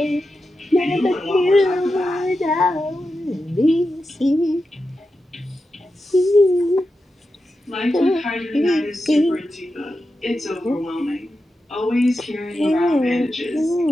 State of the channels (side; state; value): both; normal; correlation 0.90